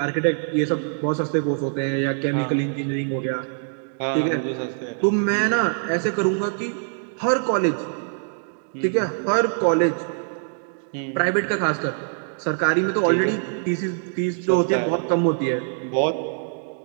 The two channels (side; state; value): left; silent; digital silence